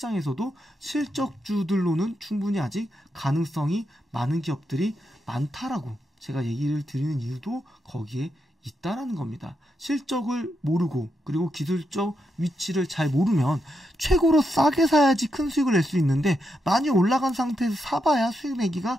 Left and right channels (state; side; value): normal; both; correlation 0.83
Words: 실적주들로는 충분히 아직 가능성이 많은 기업들이 많다라고 제가 얘기를 드리는 이유도 거기에 있다라는 겁니다. 실적을 모르고 그리고 기술적 위치를 잘 모르면 최고로 싸게 사야지 큰 수익을 낼 수 있는데, 많이 올라간 상태에서 사봐야 수익 내기가